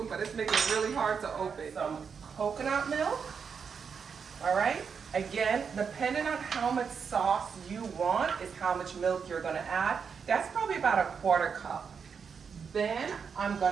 but it's making it really hard to open. Some coconut milk. All right, again, depending on how much sauce you want is how much milk you're gonna add. That's probably about a 1/4 cup. Then I'm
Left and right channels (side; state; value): left; quieter; 6.3 dB